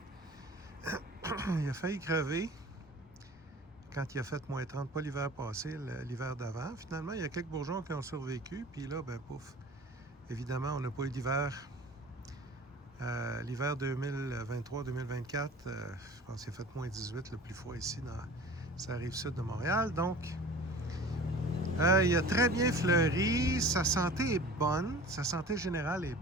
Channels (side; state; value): both; normal; correlation 0.42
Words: Il a failli crever quand il a fait moins 30, pas l'hiver passé, l'hiver d'avant. Finalement, il y a quelques bourgeons qui ont survécu. Puis là, ben pouf, évidemment, on n'a pas eu d'hiver. L'hiver 2023-2024, je pense qu'il a fait moins 18, le plus froid ici, ça arrive sud de Montréal. Donc, il a très bien fleuri. Sa santé est bonne. Sa santé générale est